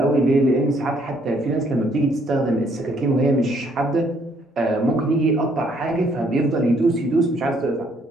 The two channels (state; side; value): normal; both; correlation 0.67